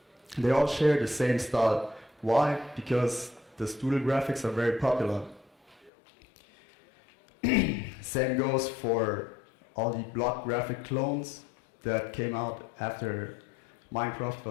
They all share the same style. Why? Because the doodle graphics are very popular. Same goes for all the block graphic clones that came out after Minecraft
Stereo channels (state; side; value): drops out; right; at 5.9 s